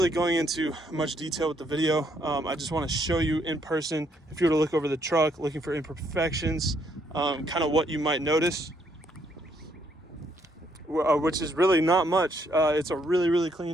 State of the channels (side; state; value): both; normal; correlation 0.71